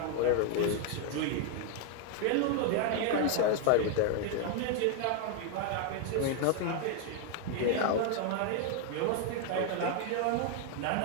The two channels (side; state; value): both; different; correlation 0.00